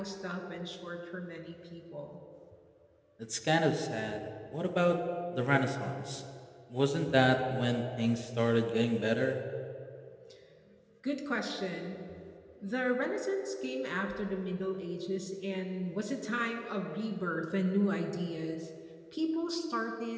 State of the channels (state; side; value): identical; both; correlation 1.00